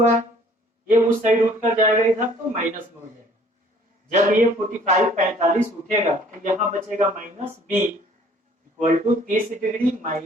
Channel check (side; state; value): both; normal; correlation 0.56